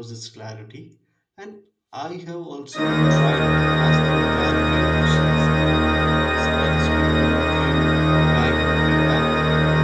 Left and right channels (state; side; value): identical; both; correlation 1.00